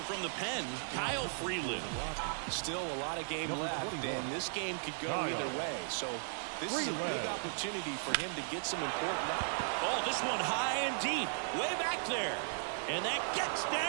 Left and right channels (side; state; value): left; silent; digital silence